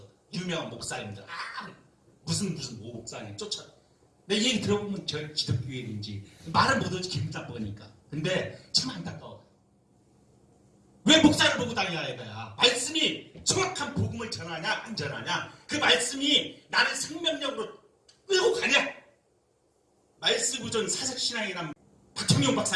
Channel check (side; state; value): both; identical; correlation 1.00